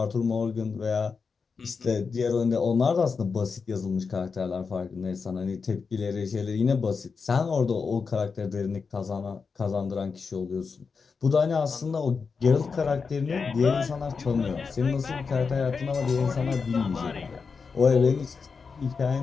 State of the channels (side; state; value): right; quieter; 5.2 dB